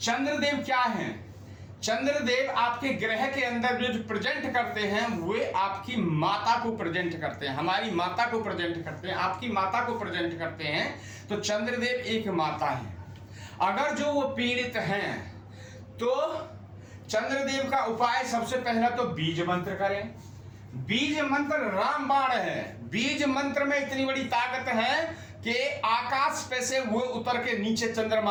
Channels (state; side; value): identical; both; correlation 1.00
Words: चंद्रदेव क्या हैं? चंद्रदेव आपके ग्रह के अंदर जो प्रेजेंट करते हैं वे आपकी माता को प्रेजेंट करते हैं, हमारी माता को प्रेजेंट करते हैं, आपकी माता को प्रेजेंट करते हैं। तो चंद्रदेव एक माता है। अगर जो वो पीड़ित हैं तो चंद्रदेव का उपाय सबसे पहला तो बीज मंत्र करें। बीज मंत्र रामबाण है। बीज मंत्र में इतनी बड़ी ताकत है कि आकाश पे से वो उतर के नीचे चंद्रमा